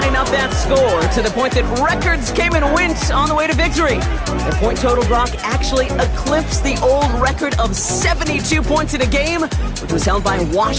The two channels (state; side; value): identical; both; correlation 1.00